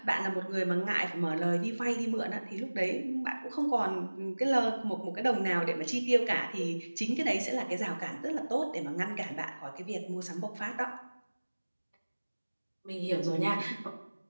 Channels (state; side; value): inverted; both; correlation -1.00